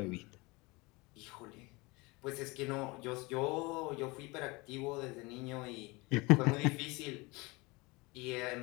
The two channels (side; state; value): right; quieter; 24.9 dB